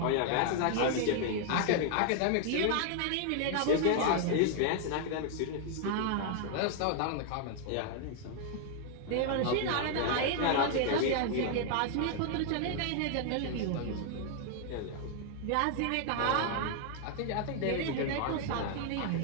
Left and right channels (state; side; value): different; both; correlation 0.00